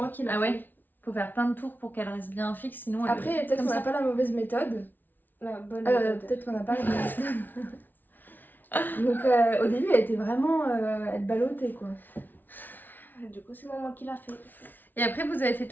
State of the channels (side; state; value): right; late; 0.087 ms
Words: qui l'a Ah fait. ouais? Faut faire plein de tours pour qu'elle reste bien fixe, sinon elle... Après, peut-être comme qu'on ça. n'a pas la mauvaise méthode. La bonne méthode. Peut-être qu'on n'a pas la mauvaise méthode. Donc, au début, elle était vraiment... elle ballottait, quoi. Du coup, c'est maman qui l'a fait. Et après, vous avez fait